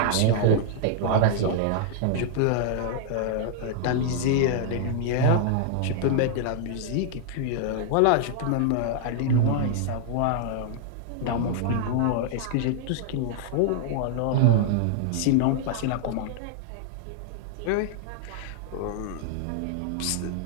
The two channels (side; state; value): both; different; correlation 0.00